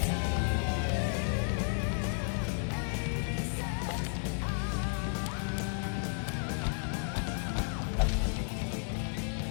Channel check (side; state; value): right; silent; 56 dB below the other